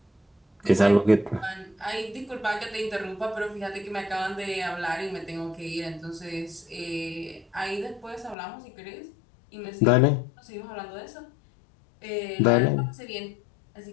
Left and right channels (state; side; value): drops out; right; at 8.3 s